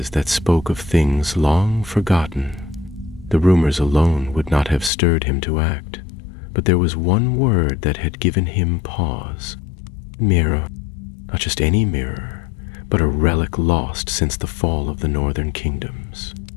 that spoke of things long forgotten. The rumors alone would not have stirred him to act. But there was one word that had given him pause. Mirror. Not just any mirror, but a relic lost since the fall of the northern kingdoms.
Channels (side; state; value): right; drops out; at 4.9 s